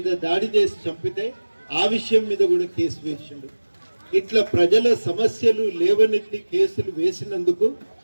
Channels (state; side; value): inverted; both; correlation -1.00